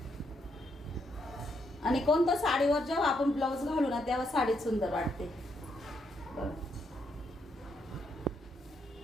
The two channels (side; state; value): both; normal; correlation 0.77